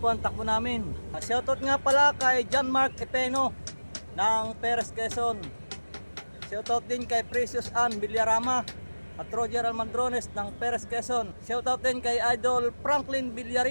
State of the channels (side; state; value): both; inverted; correlation -1.00